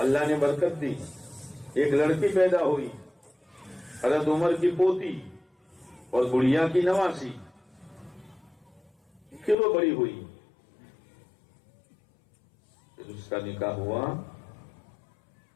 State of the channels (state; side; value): drops out; right; at 9.6 s